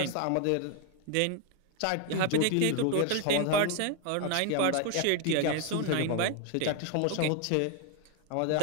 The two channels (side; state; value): both; different; correlation 0.01